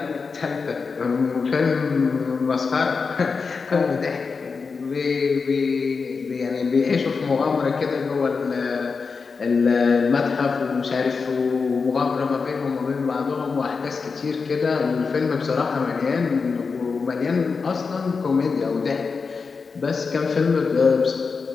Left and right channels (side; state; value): right; quieter; 4.9 dB